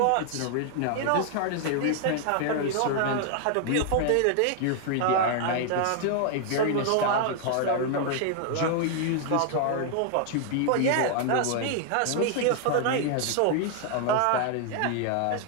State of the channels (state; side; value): different; both; correlation 0.00